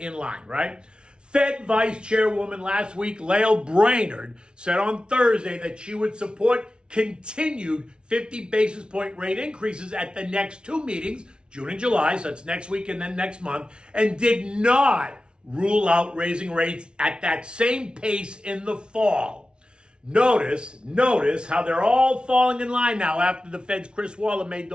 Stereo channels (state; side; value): late; left; 0.056 ms